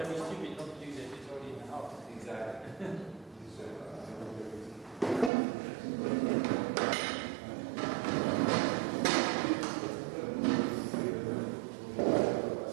was stupid not to use it, it's already in the house. Exactly.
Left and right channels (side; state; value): left; drops out; at 5.3 s